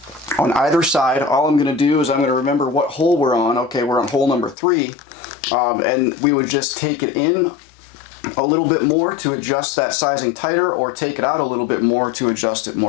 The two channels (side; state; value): right; drops out; at 4.5 s